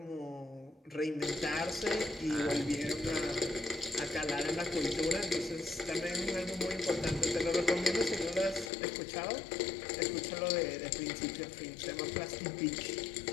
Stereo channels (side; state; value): right; drops out; at 8.7 s